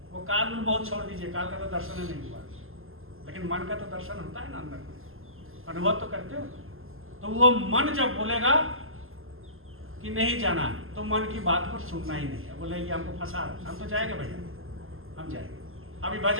वो काल में बहुत छोड़ दीजिए, काल का तो दर्शन नहीं हुआ, लेकिन मन का तो दर्शन होता है ना, अंदर में अनुभव तो करते हो। तो वो मन जब बोलेगा कि नहीं जाना, तो मन की बात को सुनना ही नहीं है। बोले ये हमको फंसा रहा है, हम तो जाएंगे भैया, हम जाएंगे। अभी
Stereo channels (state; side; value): late; left; 0.60 ms